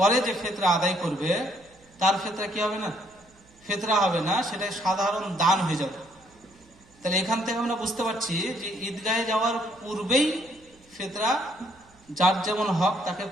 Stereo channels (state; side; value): noise; right; hum, 29 dB below the sound